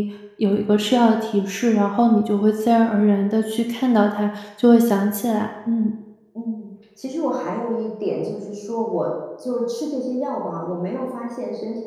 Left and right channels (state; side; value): identical; both; correlation 1.00